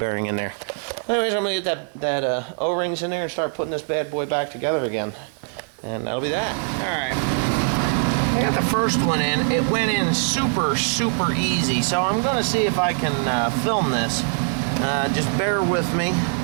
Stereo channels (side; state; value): left; silent; 64 dB below the other